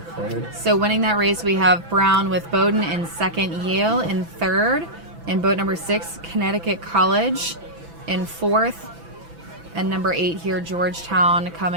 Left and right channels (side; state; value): left; late; 6.0 ms